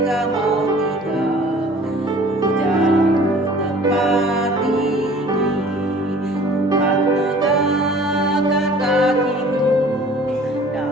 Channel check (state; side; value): normal; both; correlation 0.49